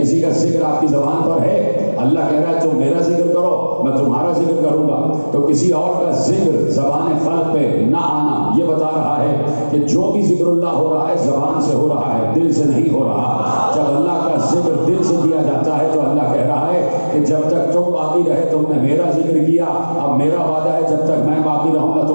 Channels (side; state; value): both; inverted; correlation -1.00